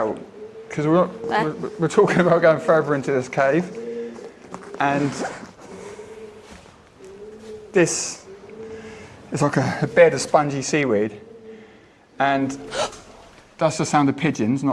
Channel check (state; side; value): identical; both; correlation 1.00